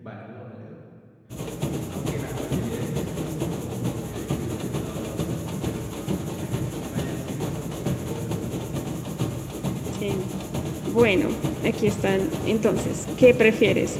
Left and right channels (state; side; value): identical; both; correlation 1.00